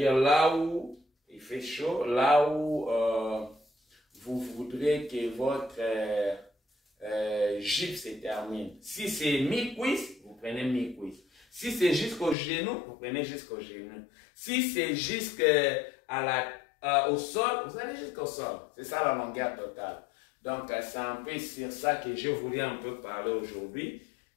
là où il fait chaud, là où vous voudrez que votre jupe se termine. Si c'est mi-cuisse, vous prenez mi-cuisse. Si c'est jusqu'au genou, vous prenez jusqu'au genou. Si c'est jusqu'au sol, vous allez jusqu'au sol. C'est ça la longueur totale. Donc, c'est un peu sur ça que je voulais un peu parler aujourd'hui.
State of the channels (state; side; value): drops out; right; at 12.4 s